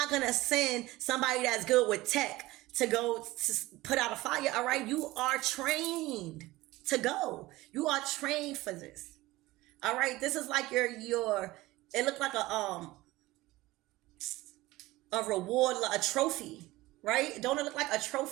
to send somebody that's good with tech to go to put out a fire. All right. You are trained to go. You are trained for this. All right. This is like it looked like a reward, a trophy, right? Don't it look like a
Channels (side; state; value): left; quieter; 18.8 dB